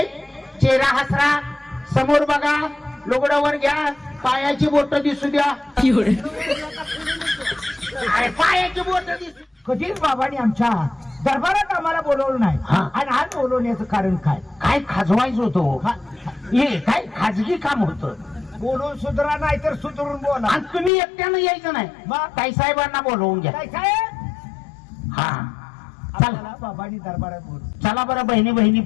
चेहरा हसरा, समोर बघा, लुगडावर घ्या, पायाची बोट दिसू द्या. अरे पायाची बोट दिसू. कधीच बाबांनी आमच्या दरबारात आम्हाला बोलवलं नाही. आणि आज बोलवण्याचं कारण काय? काय खाजवायचं होतं? हे काय खाजगी काम होतं. बोलून सुधरा नाही तर सुधरून बोला. आणि तुम्ही एकट्यानं यायचं नाही, ताईसाहेबांना बोलवून घ्या. काय साहेब हा चला बाबांनी दरबारात बोलू. चला बरं बहिणी बहिणी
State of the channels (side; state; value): right; drops out; at 20.9 s